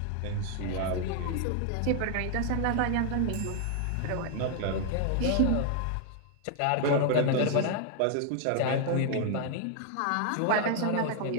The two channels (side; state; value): both; different; correlation 0.00